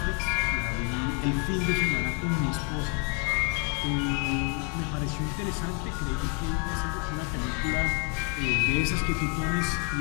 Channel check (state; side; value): quieter; right; 31.7 dB